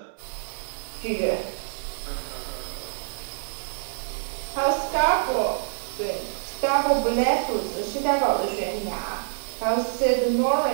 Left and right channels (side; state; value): left; silent; digital silence